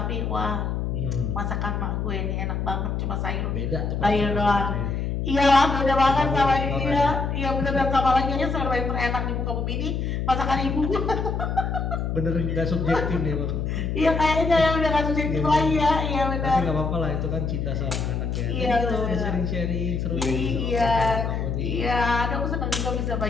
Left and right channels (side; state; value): left; noise; hum, 1 dB below the sound